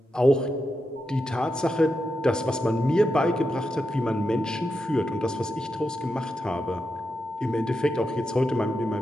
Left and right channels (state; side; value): normal; both; correlation 0.86